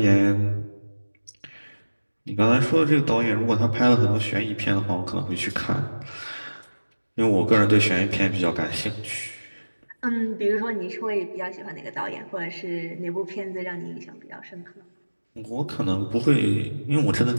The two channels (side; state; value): both; inverted; correlation -1.00